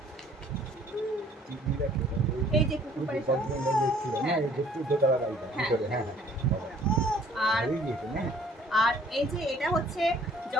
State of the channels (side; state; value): both; normal; correlation 0.57